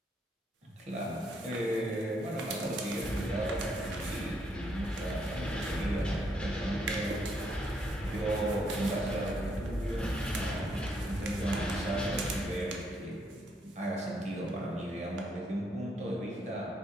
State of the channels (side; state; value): both; normal; correlation 0.74